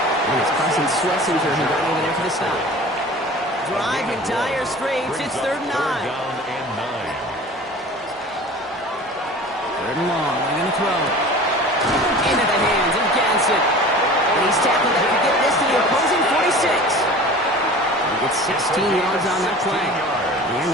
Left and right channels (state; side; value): normal; both; correlation 0.40